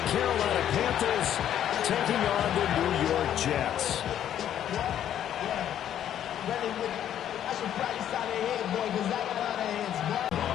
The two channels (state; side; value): quieter; right; 10.5 dB